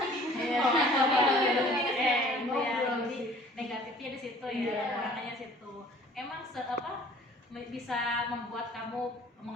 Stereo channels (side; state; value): both; normal; correlation 0.51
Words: Jadi negatifnya di situ ya, makanya situ. Emang bisa membuat kamu